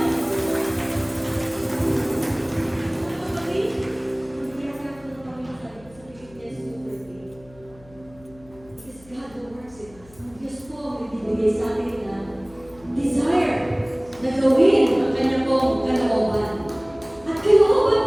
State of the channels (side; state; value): left; noise; hum, 24 dB below the sound